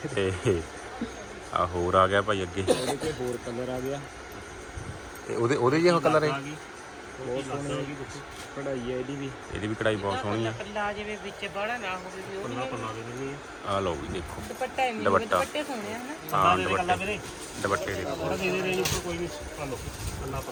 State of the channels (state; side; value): identical; both; correlation 1.00